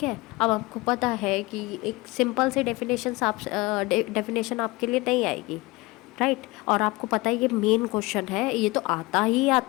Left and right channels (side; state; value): right; quieter; 22.8 dB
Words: है। अब आपको पता है कि एक सिंपल सी डेफिनेशन आपके लिए नहीं आएगी, राइट। और आपको पता है ये मेन क्वेश्चन है, ये तो आता ही